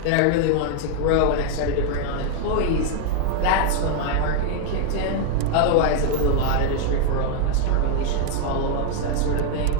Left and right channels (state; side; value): different; both; correlation 0.00